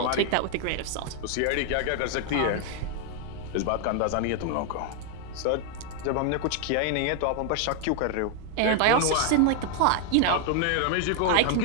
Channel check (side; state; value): both; different; correlation 0.00